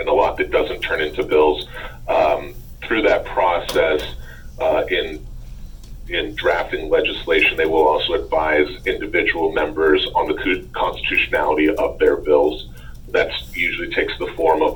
a lot that doesn't turn into bills. Through that process, in drafting legislation, they will also advise individual members on the constitutionality of their bills. That usually takes the form of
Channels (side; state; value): both; identical; correlation 1.00